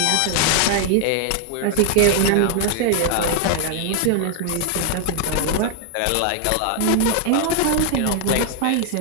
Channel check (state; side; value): different; both; correlation 0.00